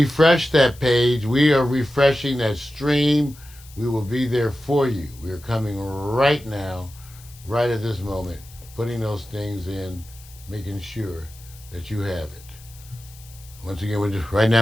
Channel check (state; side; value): noise; left; hiss, 22 dB below the sound